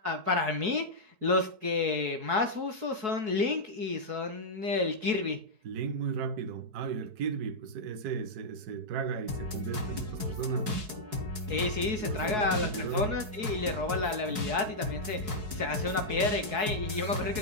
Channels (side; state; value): left; late; 4.7 ms